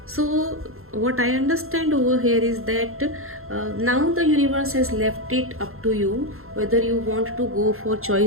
So what I understand over here is that now the universe has left it up to you whether you want to go for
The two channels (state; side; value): late; left; 0.62 ms